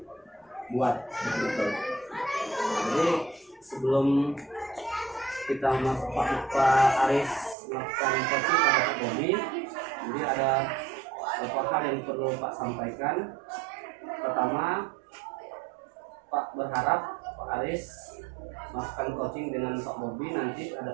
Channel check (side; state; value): left; drops out; at 7.6 s